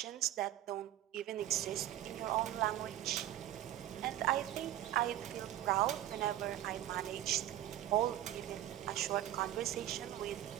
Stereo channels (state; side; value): quieter; left; 13.0 dB